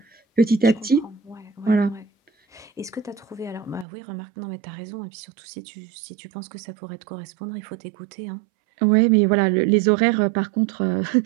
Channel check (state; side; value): drops out; left; at 3.9 s